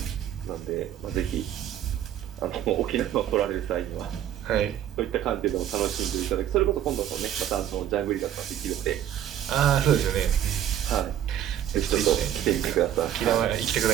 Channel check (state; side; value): quieter; left; 10.9 dB